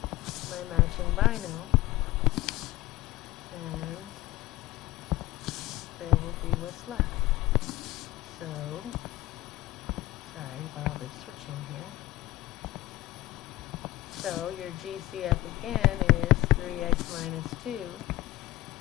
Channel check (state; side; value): quieter; right; 17.6 dB